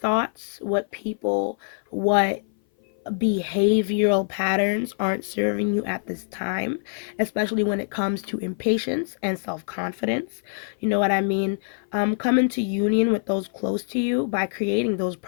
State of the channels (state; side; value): silent; right; 57 dB below the other